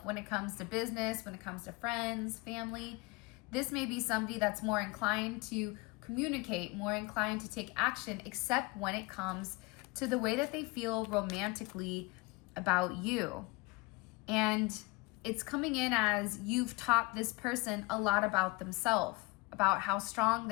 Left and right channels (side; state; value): right; quieter; 24.8 dB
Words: when it comes to business, when it comes to friends, family. This may be somebody that's more inclined to communicate, more inclined to take action, except when it comes to the way that they feel romantically about you. And it's coming in as you've taught this person a lot about themselves, about how strong